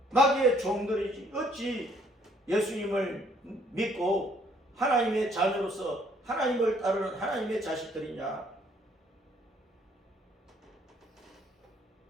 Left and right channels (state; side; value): normal; both; correlation 0.64